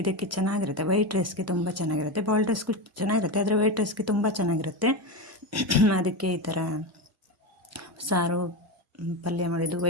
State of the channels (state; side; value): normal; both; correlation 0.17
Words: ಇದಕ್ಕೆ ಚೆನ್ನಾಗಿರುತ್ತೆ. ವೈಟ್ ರೈಸ್ಗೆ ತುಂಬ ಚೆನ್ನಾಗಿರುತ್ತೆ, ಬಾಯ್ಲ್ಡ್ ರೈಸ್ಗೂ ಚೆನ್ನಾಗಿರುತ್ತೆ, ಆದರೆ ವೈಟ್ ರೈಸ್ಗೆ ತುಂಬ ಚೆನ್ನಾಗಿರುತ್ತೆ. ಅದಕ್ಕೆ ಈ ಥರ ಸಾರು ಪಲ್ಯ ಮಾಡಿದ್ದು